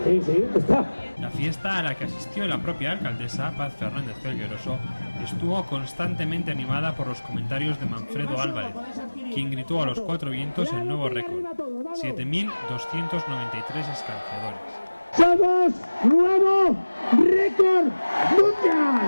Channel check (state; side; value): inverted; both; correlation -1.00